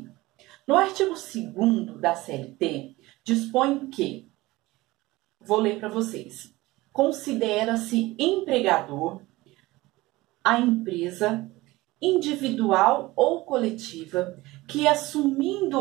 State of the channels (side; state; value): left; quieter; 19.6 dB